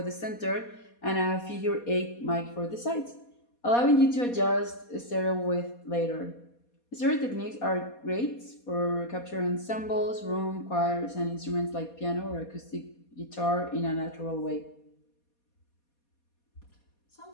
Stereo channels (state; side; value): late; right; 4.2 ms